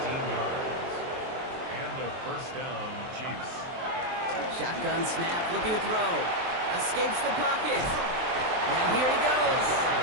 First down, Chiefs. Shotgun snap, looking to throw. Escapes the pocket. Now here he goes.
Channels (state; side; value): late; left; 23 ms